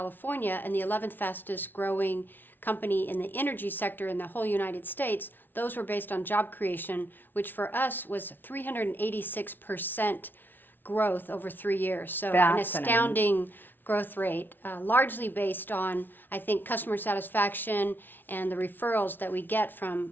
and the 11th fastest growing company in the energy sector in the whole United States, those were based on job creation, which for us was 386% growth over 3 years. So an Fascinating. astounding growth rate, largely based on, I think, customer satisfaction and the referrals that we get from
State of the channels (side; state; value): right; late; 0.093 ms